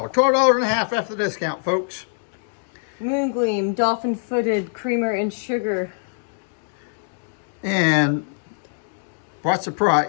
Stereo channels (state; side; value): silent; right; digital silence